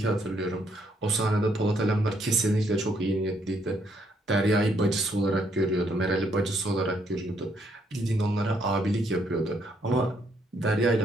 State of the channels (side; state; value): both; normal; correlation 0.72